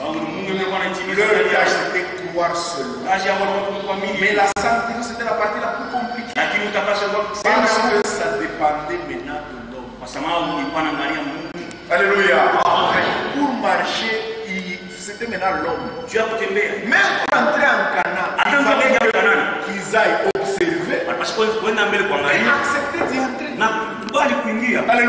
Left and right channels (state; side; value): identical; both; correlation 1.00